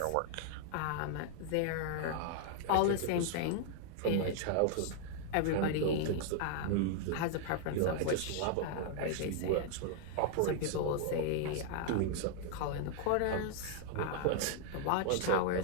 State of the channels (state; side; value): different; both; correlation 0.00